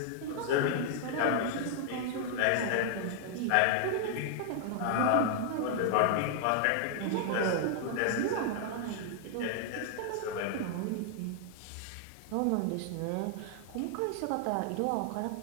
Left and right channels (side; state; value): both; different; correlation -0.01